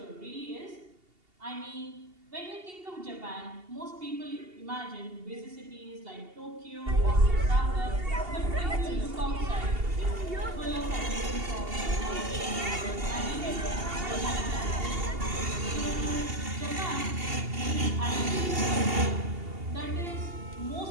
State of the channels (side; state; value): left; late; 2.8 ms